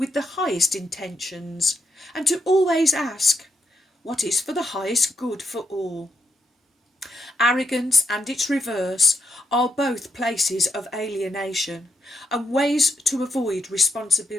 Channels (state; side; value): normal; both; correlation 0.83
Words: the highest intentions, and to always ask, what is for the highest good for all? Arrogance and its reverse are both places of alienation and ways to avoid